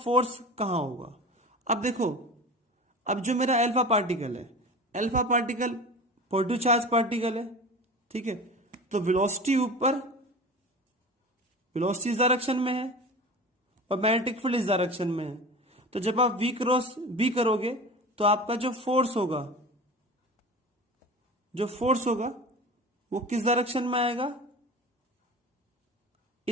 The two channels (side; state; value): both; normal; correlation 0.33